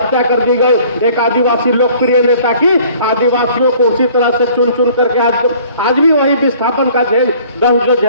कर दी गई, एक आदिवासी लोकप्रिय नेता की, आदिवासियों को उसी तरह से चुन चुन करके आज भी वही विस्थापन का दर्द जो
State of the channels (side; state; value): both; inverted; correlation -0.53